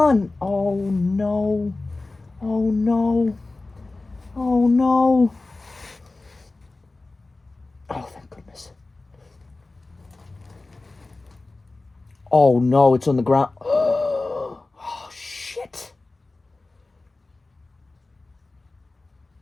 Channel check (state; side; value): quieter; right; 3.3 dB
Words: Oh no. Oh no. Oh no. Oh, thank goodness. Oh no, it's on the ground. Oh shit.